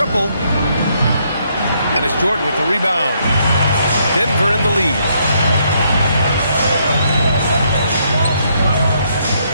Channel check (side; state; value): both; inverted; correlation -0.73